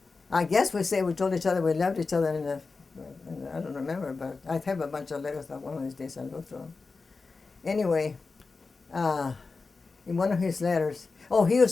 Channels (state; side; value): quieter; right; 4.2 dB